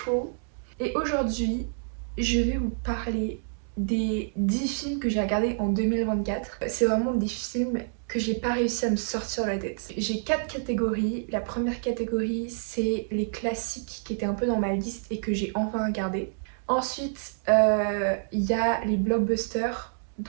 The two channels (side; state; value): left; silent; digital silence